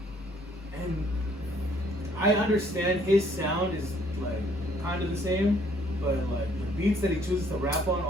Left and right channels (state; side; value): normal; both; correlation 0.63